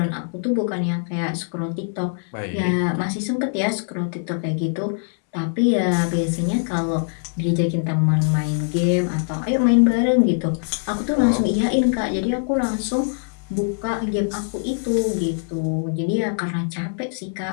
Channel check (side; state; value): right; silent; digital silence